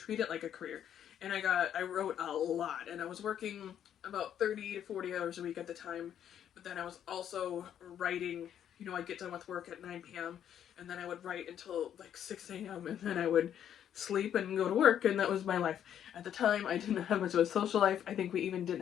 it like a career. And I wrote a lot, and I was working about 30 to 40 hours a week at the time, but then I was also writing. I'd get done with work at 9 p.m. and then I would write until like 6 a.m. and then I would sleep and go to work, and that was my life. At the time, I didn't have much of a social life. I think we even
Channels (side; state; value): right; quieter; 9.8 dB